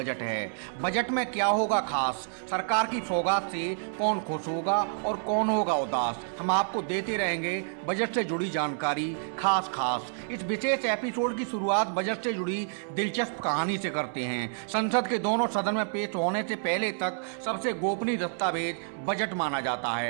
है। बजट में क्या होगा खास, सरकार की सौगात से कौन खुश होगा और कौन होगा उदास, हम आपको देते रहेंगे बजट से जुड़ी जानकारी खास। इस विशेष एपिसोड की शुरुआत बजट से जुड़ी दिलचस्प कहानी से करते हैं। संसद के दोनों सदन में पेश होने से पहले तक सबसे गोपनीय दस्तावेज बजट माना जाता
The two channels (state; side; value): silent; left; 58 dB below the other